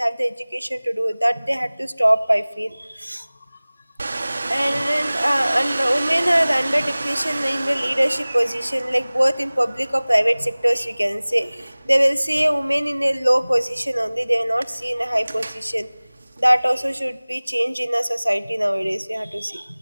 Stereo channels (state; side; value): inverted; both; correlation -0.99